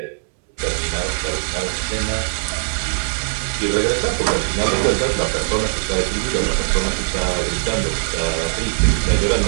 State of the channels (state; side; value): silent; left; 66 dB below the other